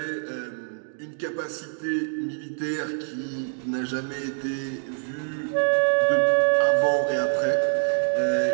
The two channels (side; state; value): left; silent; digital silence